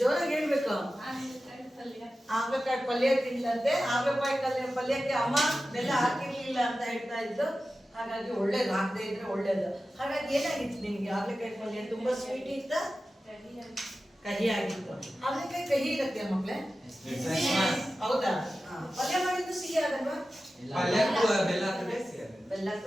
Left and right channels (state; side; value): normal; both; correlation 0.94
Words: ಹೇಳ್ಬೇಕು. ಹಾಗಲಕಾಯಿ ಪಲ್ಯ ತಿಂದಂತೆ. ಹಾಗಲಕಾಯಿ ಪಲ್ಯಕ್ಕೆ ಅಮ್ಮ ಬೆಲ್ಲ ಹಾಕಿರ್ಲಿಲ್ಲ ಅಂತ ಹೇಳ್ತಾ ಇದ್ದು. ಹಾಗಾಗಿ ಒಳ್ಳೇದು, ಹಾಕದೇ ಇದ್ರೆ ಒಳ್ಳೇದು. ಹಾಗಾಗಿ ಏನಾಗಿತ್ತು ನಿಮ್ಗೆ? ಹಾಗಲಕಾಯಿ ಪಲ್ಯ ತುಂಬಾ ಸ್ವೀಟ್ ಇತ್ತ, ಕಹಿ ಆಗಿತ್ತು? ಹಾಗಲಕಾಯಿ ಕಹಿ ಇರುತ್ತೆ ಮಕ್ಳೇ, ಹೌದಾ? ಪಲ್ಯ ಮಾಡಿದ್ದು ಸಿಹಿ ಆಗಲ್ವಾ? ಪಲ್ಯಕ್ಕೂ